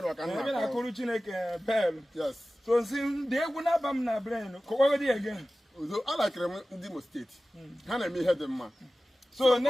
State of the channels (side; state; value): both; normal; correlation 0.96